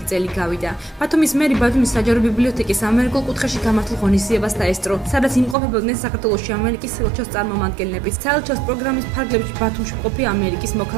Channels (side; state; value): left; drops out; at 5.6 s